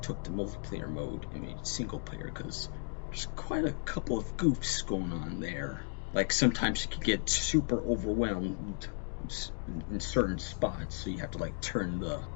took the multiplayer mode and made it single player, because there's quite a couple of goofs going on there. Like, sometimes you could get super overwhelmed in certain spots, so you have to like turn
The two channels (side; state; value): right; silent; 55 dB below the other